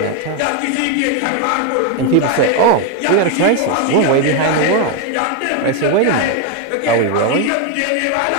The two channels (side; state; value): both; different; correlation 0.02